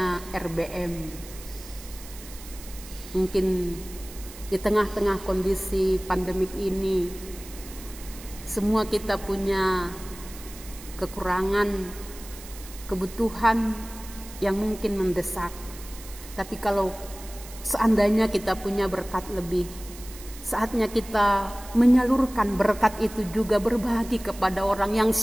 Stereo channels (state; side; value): noise; right; hiss, 16 dB below the sound